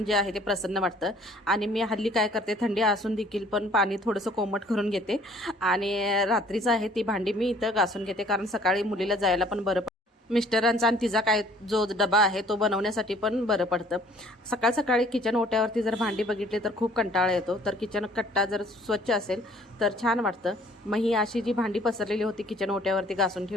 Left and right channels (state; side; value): normal; both; correlation 0.56